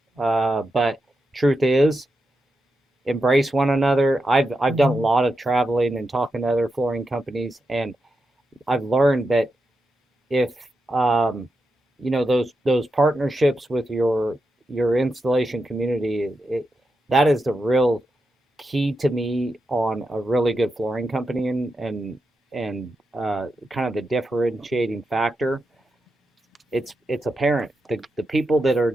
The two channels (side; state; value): both; normal; correlation 0.87